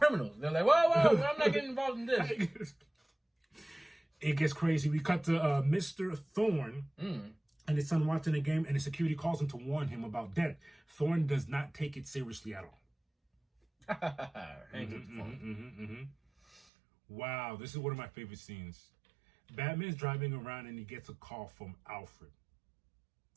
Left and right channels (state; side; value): drops out; left; at 16.6 s